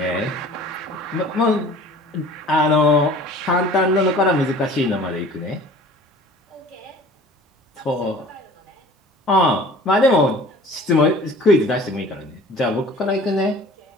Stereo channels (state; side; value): normal; both; correlation 0.46